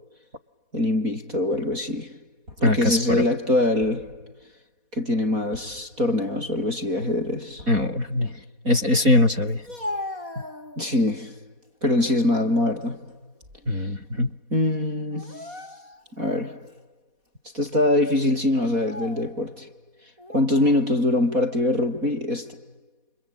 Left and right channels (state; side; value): late; left; 4.1 ms